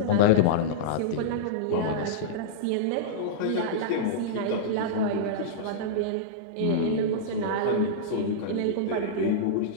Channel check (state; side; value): different; both; correlation -0.04